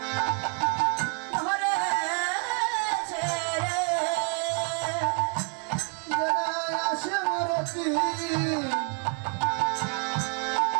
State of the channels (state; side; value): quieter; left; 39.8 dB